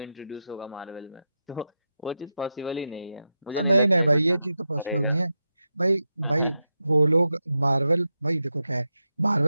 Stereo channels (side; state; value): both; inverted; correlation -0.90